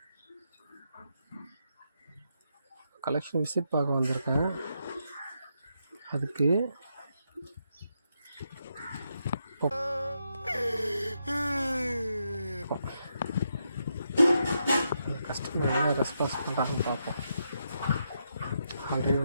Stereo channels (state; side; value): inverted; both; correlation -0.81